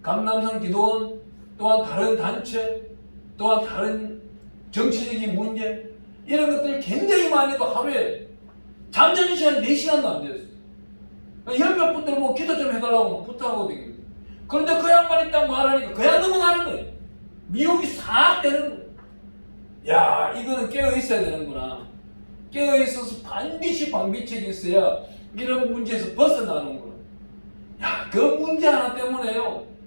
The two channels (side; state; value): both; inverted; correlation -1.00